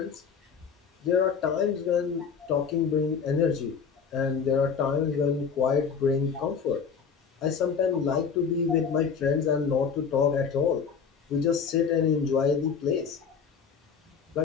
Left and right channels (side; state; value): right; quieter; 6.2 dB